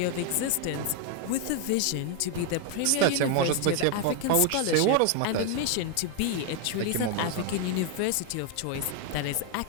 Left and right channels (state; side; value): different; both; correlation 0.01